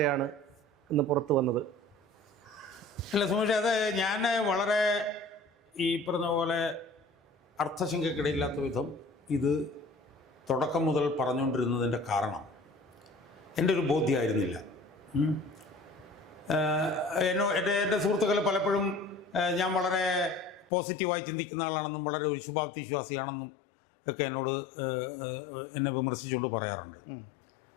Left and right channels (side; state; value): right; drops out; at 20.7 s